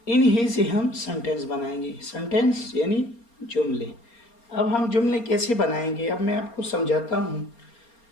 इन्हीं से हम सेंटेंस बनाएंगे। सेंटेंस यानी जुमले। अब हम जुमले कैसे बनाएंगे, अब मैं आपको समझाता हूँ।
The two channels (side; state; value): right; late; 4.3 ms